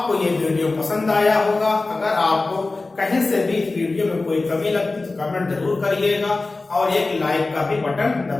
ये वीडियो पसंद आया होगा। अगर आपको कहीं से भी इस वीडियो में कोई कमी लगती तो कमेंट जरूर करिएगा और एक लाइक का भी बटन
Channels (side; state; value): right; quieter; 3.4 dB